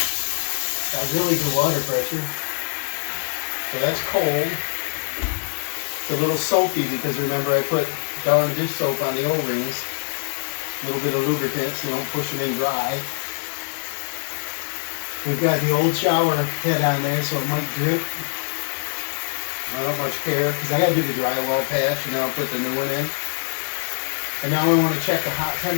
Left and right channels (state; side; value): silent; right; digital silence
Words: Got really good water pressure. So that's cold. It's a little soapy because remember I put Dawn dish soap on the O-rings. A little bit of lubricant so you don't push them in dry. We've got the old shower head on there so it might drip. I don't much care because I got to do the drywall patch and then I'll put the new one in. And now I want to check the hot